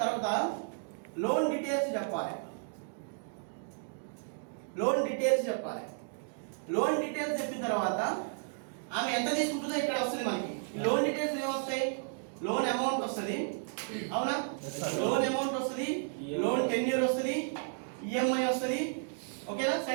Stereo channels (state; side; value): silent; left; digital silence